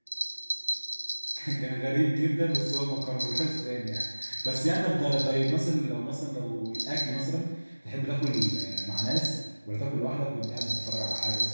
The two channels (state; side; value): inverted; both; correlation -1.00